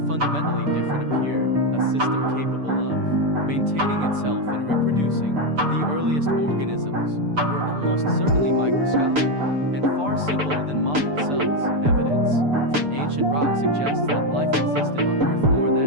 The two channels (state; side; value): late; left; 6.9 ms